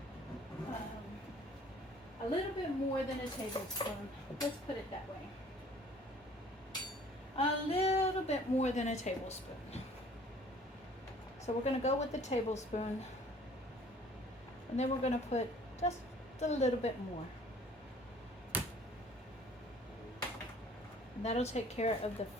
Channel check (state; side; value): normal; both; correlation 0.54